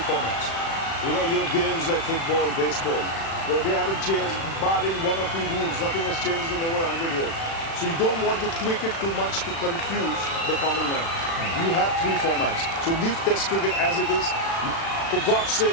formats. Your games like football, baseball, they haven't changed, barring 1 or 2 rules. Nothing has changed in over 100 years. So you don't want to tweak it too much to confuse the common man. You have 3 formats. So leave Test cricket as it is. For God's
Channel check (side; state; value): right; late; 36 ms